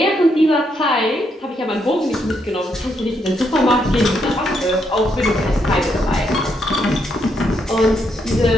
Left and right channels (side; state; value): both; normal; correlation 0.77